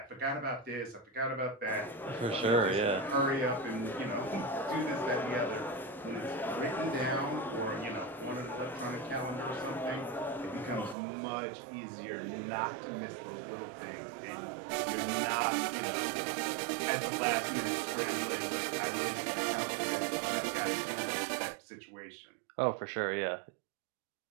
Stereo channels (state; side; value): drops out; left; at 11.0 s